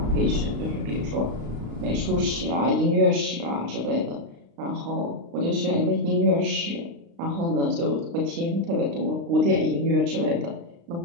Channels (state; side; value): late; left; 35 ms